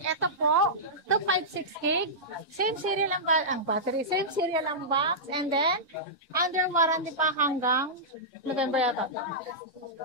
po, 256 gig, same serial ang battery, same serial ang box, and then, under warranty pa hanggang November yata.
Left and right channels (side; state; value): both; normal; correlation -0.13